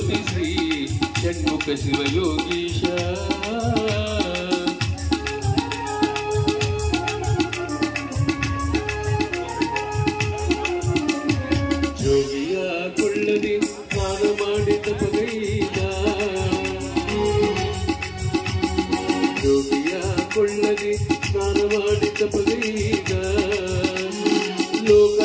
ಶ್ರೀ ಷಣ್ಮುಖ ಶಿವಯೋಗೀಶ ಜೋಗಿಯ ಕೊಳ್ಳದೆ ಸ್ನಾನ ಮಾಡಿದ ಪಗೈದ ಜೋಗಿಯ ಕೊಳ್ಳದೆ ಸ್ನಾನ ಮಾಡಿದ ಪಗೈದ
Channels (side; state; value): both; identical; correlation 1.00